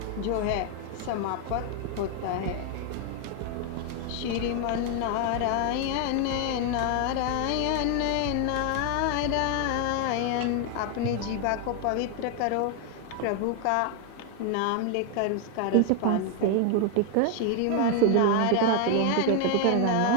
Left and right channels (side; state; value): both; different; correlation 0.00